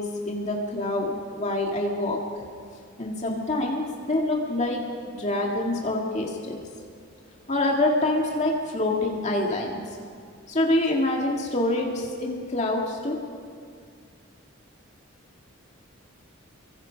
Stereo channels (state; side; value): normal; both; correlation 0.28